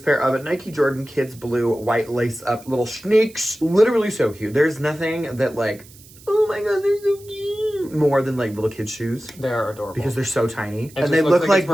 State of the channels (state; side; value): noise; right; hiss, 23 dB below the sound